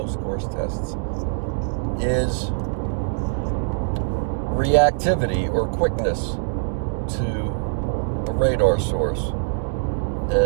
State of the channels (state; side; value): silent; left; digital silence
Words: course tests, is reactivity or quickness to a radar source.